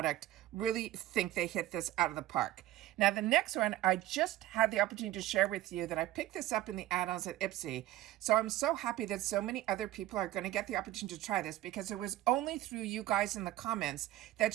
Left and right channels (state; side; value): quieter; left; 14.9 dB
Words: Really think they hit this out of the park. Now, the next one, I just had the opportunity to share with you that I picked this up in the add-ons at Ipsy. So I'm so happy that so many other people are going to get the opportunity to try this, because it was only through you guys in the comments that